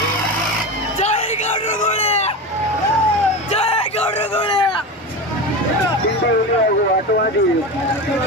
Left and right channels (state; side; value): normal; both; correlation 0.24